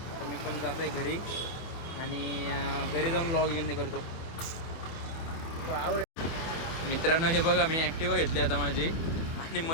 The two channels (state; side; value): late; right; 24 ms